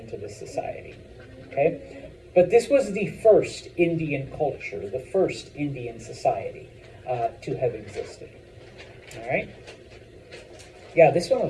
to the society, okay? But this was the first Indian culture, the first Indian society to have existed, all right? Yeah, this one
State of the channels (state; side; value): identical; both; correlation 1.00